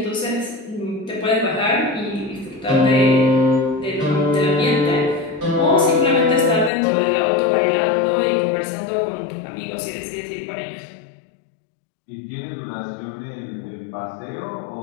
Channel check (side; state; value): right; drops out; at 6.7 s